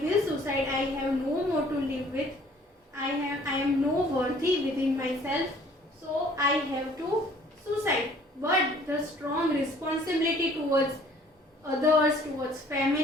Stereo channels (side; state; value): both; normal; correlation 0.56